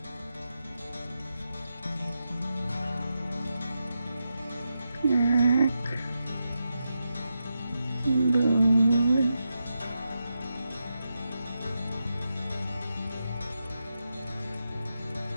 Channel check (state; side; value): inverted; both; correlation -0.87